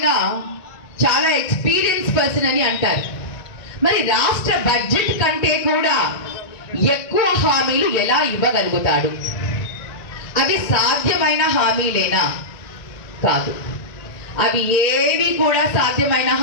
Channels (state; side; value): late; right; 1.9 ms